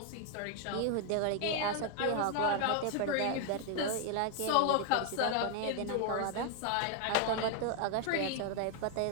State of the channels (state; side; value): different; both; correlation 0.00